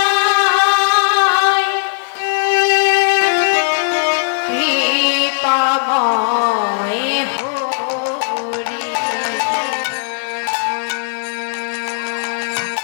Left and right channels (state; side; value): silent; right; digital silence